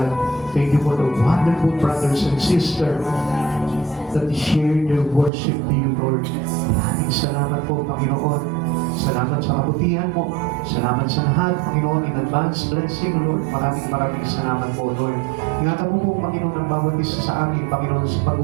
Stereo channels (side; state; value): left; drops out; at 5.3 s